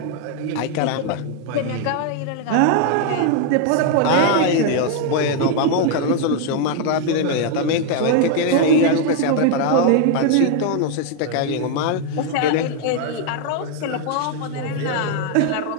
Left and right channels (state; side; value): different; both; correlation 0.00